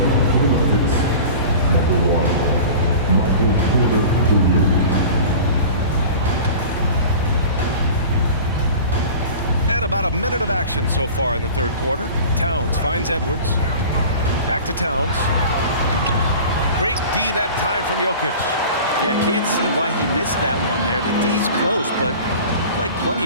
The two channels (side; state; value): both; inverted; correlation -0.38